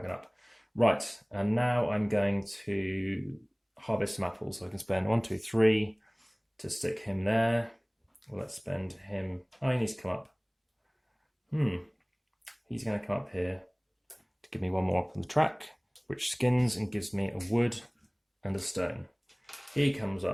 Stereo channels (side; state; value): both; identical; correlation 1.00